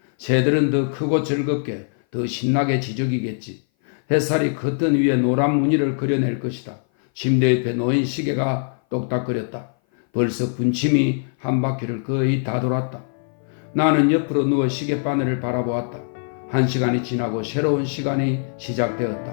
새들은 더 크고 즐겁게, 더 신나게 지저귀겠지. 햇살이 커튼 위에 노란 무늬를 그려낼 것이다. 침대 옆에 놓인 시계가 똑딱거렸다. 벌써 분침이 한 바퀴를 거의 다 돌았다. 나는 옆으로 누워 시계바늘을 바라보았다. 1시간이 지나고 새로운 시간이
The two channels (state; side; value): silent; right; 58 dB below the other